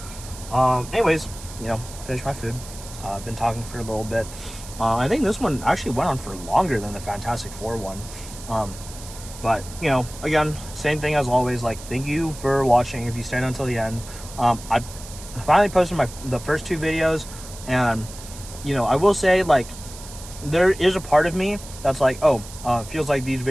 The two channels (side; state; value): right; noise; hiss, 15 dB below the sound